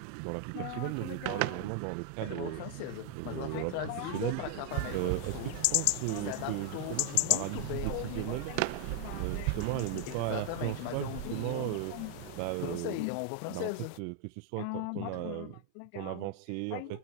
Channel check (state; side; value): different; both; correlation 0.00